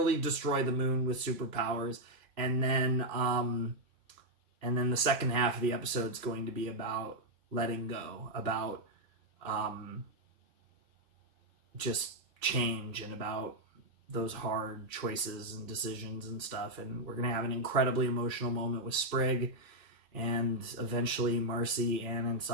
destroy the moon with superpowers. And then the second half of the episode is going to be about letting go, about just change, and about those hard choices and decisions and stuff. And we're going to have an incredibly emotional moment with Sprig, and eventually Marcy, Anne, and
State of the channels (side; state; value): left; late; 2.5 ms